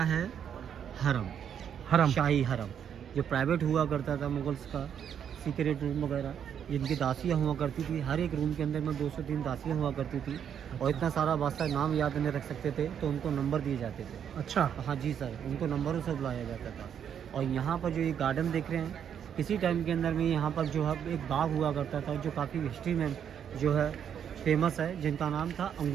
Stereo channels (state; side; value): quieter; left; 8.6 dB